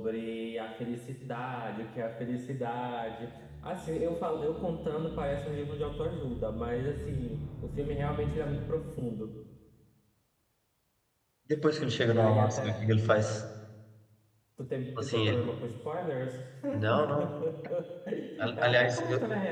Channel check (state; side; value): identical; both; correlation 1.00